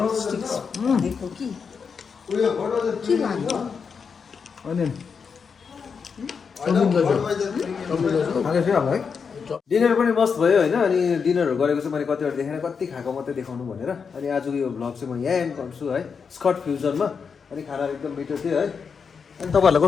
दिएको कि के लानु अनि है डिनर पनि मस्त भयो होइन अनि डिनरहरू गरेको चाहिँ मैले कतिवटा देखेन कति खाएको मात्रै देखाउनु भनेर अनि आजको यो भ्लग चाहिँ म यहाँ एन्ड गर्छु है स्कट फ्युजनमा अनि खानाहरू एकदम मिठो थियो है अनि तपाईँहरूलाई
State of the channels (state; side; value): quieter; right; 5.9 dB